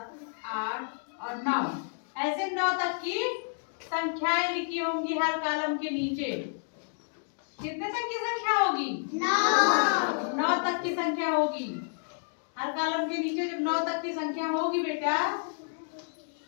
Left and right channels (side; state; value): right; silent; digital silence